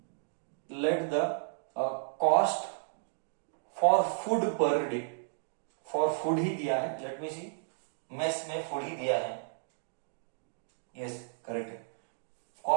the cost for food per day. For food ही दिया है. Let me see. मेस में food ही दिया है. Yes, correct है.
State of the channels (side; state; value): left; silent; digital silence